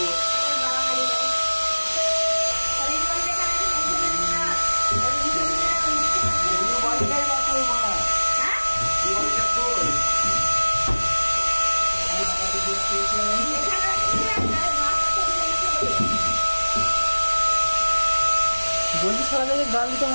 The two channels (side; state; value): both; inverted; correlation -1.00